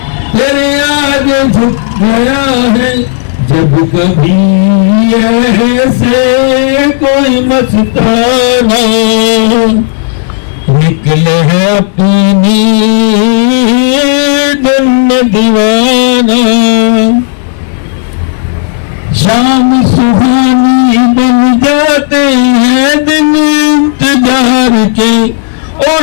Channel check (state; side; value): silent; right; digital silence